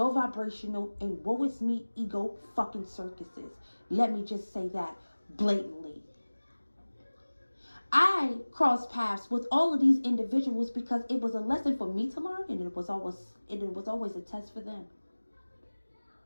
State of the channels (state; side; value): inverted; both; correlation -1.00